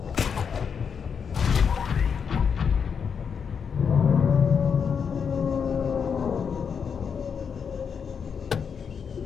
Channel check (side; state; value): right; quieter; 6.6 dB